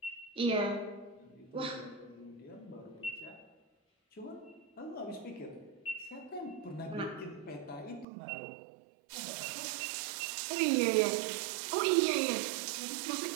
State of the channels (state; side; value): drops out; left; at 8.1 s